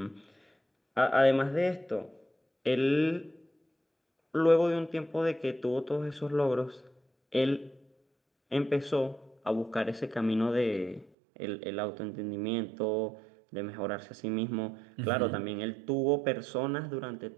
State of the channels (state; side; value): drops out; left; at 11.1 s